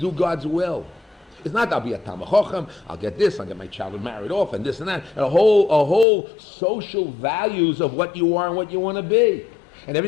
God's will. It's not I'll be a Talmid Chacham, I'll get this, I'll get my child married off, and this and that, and a whole social values of what you are and what you want to be. And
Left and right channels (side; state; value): right; drops out; at 6.1 s